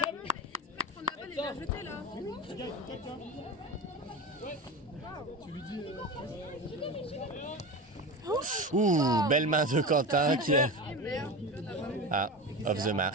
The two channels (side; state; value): both; normal; correlation 0.26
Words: Ouh, belle main de Quentin qui est... Ah, off the